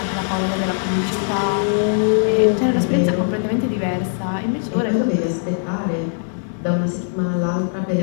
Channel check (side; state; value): right; silent; digital silence